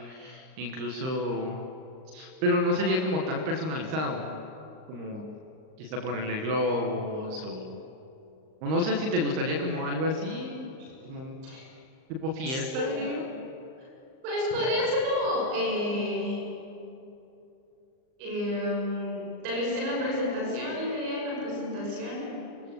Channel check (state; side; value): late; left; 38 ms